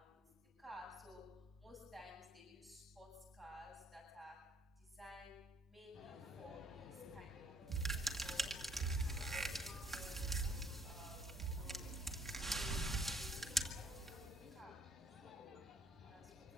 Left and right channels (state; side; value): normal; both; correlation 0.64